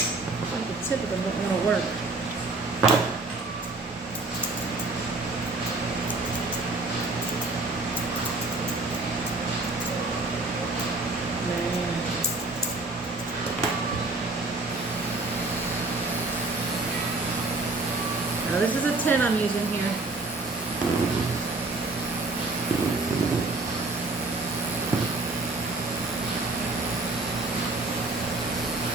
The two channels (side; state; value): left; quieter; 3.3 dB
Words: tip of them don't want to work. Now this is a 10 I'm using here.